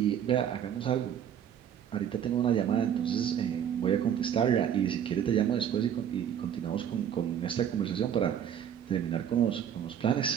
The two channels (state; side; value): quieter; left; 9.2 dB